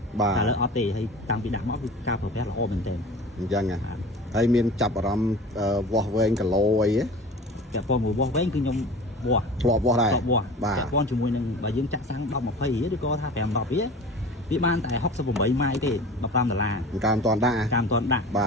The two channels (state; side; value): normal; both; correlation 0.38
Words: តែឥឡូវអត់ទេហើយតាំងពីដាក់មកគឺការប្រើប្រាស់ល្អមែនទែនអញ្ចឹងហើយមានចាប់អារម្មណ៍វាស់វែងគីឡូអីទេពាក់ព័ន្ធមួយវាស់វែងគឺខ្ញុំវាស់ធ្លាប់វាស់ដែរពាក់ព័ន្ធជាមួយនឹងបើយើងចាក់សាំង10 20រៀលឬក៏ថា5 10រៀលវាបានតែ68ម៉ាយទេ$15ការមិនតាន់ដាក់